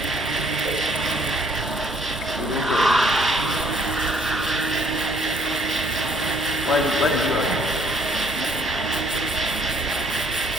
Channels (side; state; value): both; normal; correlation 0.62